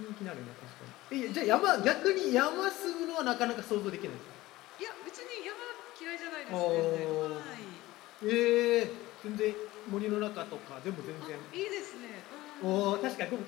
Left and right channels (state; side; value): quieter; right; 17.8 dB